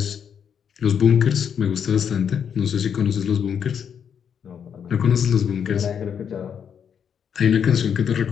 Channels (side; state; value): right; quieter; 7.8 dB